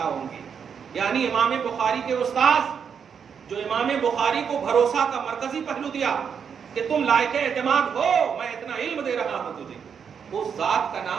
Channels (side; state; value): left; quieter; 7.0 dB